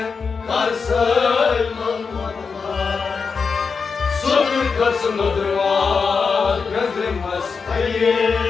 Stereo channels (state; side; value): quieter; right; 5.3 dB